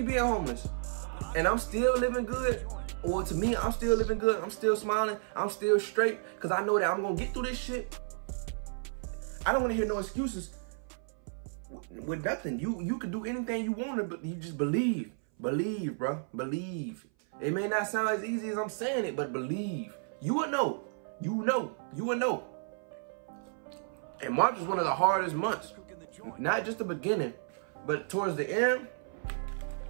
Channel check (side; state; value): left; silent; 56 dB below the other